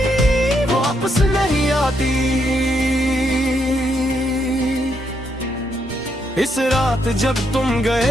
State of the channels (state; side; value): normal; both; correlation 0.77